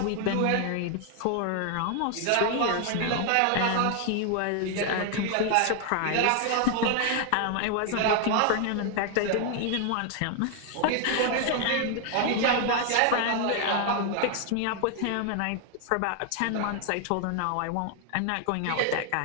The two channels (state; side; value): different; both; correlation 0.00